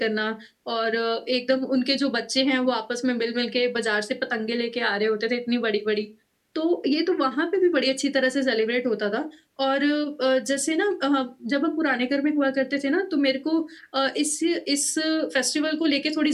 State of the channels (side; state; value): both; identical; correlation 1.00